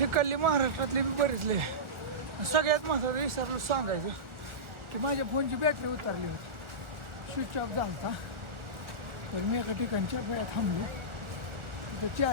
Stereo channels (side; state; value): left; late; 1.4 ms